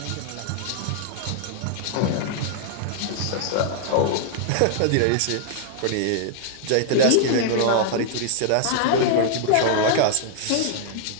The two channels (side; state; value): both; different; correlation -0.01